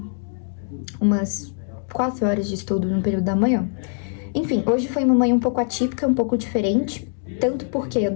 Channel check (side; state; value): right; silent; digital silence